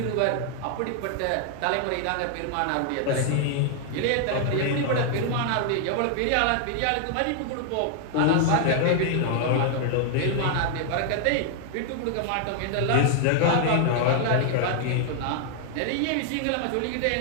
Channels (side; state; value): both; different; correlation 0.00